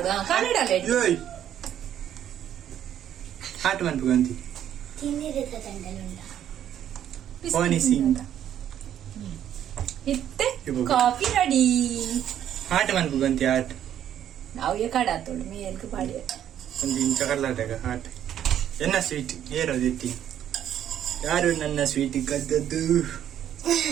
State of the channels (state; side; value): quieter; left; 10.5 dB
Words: ಕಲಡಲ ಹಾಟ್ ಬಂತು ಗಂತಿ ತಿನ್ನಿರದ ತಂಡಲುಂಡ Honey sing. ಇತ್ತೆ ಕಾಫಿ ರೆಡಿ. ಹಾಟ್ ಮನ್ಪು ಗಂತಿ ಹಾಟ್. ನಾವು ಏ ಕಡಾತೋಳು ಮೇಲ್ಗೆ ಪಾಡಿ. ಒಂದು ಇಂಚ ಕರ್ಲಾಟಗ ಹಾಟ್. ಎನ್ನ ಸ್ವೀಟ್ ಏರೋದು ಎತ್ತಿ. ಯಾರು ನನ್ನ ಸ್ವೀಟ್ ಕದ್ದದ್ದು?